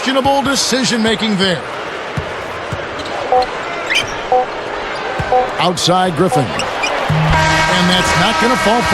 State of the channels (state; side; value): identical; both; correlation 1.00